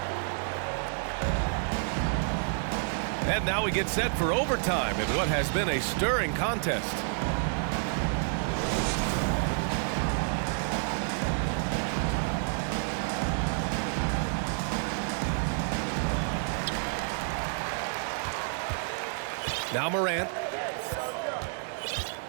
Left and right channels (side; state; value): left; silent; 58 dB below the other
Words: And now we get set for overtime in what has been a stirring contest. Now Morant.